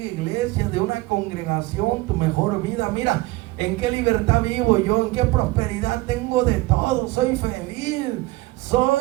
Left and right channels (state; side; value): quieter; left; 20.0 dB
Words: de una congregación, tu mejor vida. Mira, en qué libertad vivo yo, en qué prosperidad tengo de todo. Soy feliz,